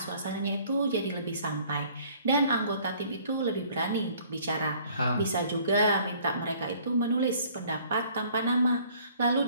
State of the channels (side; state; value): both; inverted; correlation -0.56